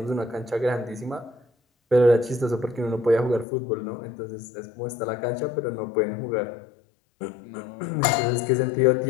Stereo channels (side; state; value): right; drops out; at 3.5 s